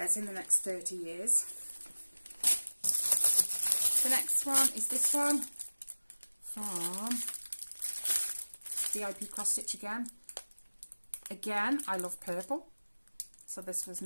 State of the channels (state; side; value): inverted; both; correlation -1.00